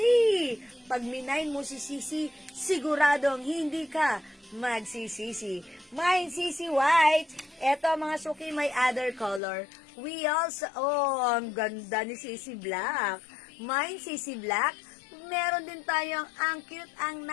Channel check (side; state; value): right; drops out; at 9.4 s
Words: Pag minayin mo si CC, siguradong hindi ka magsisisi. Mine CC White. Eto mga suki, may other color. We also, ang ganda ni CC Black. Mine CC Black. Meron din tayong ang cute, ang